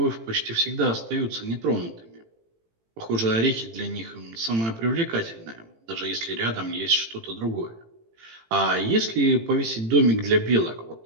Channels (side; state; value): left; late; 18 ms